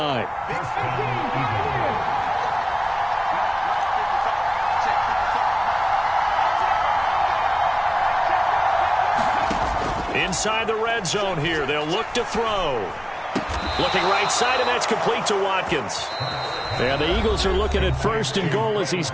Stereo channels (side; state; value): both; identical; correlation 1.00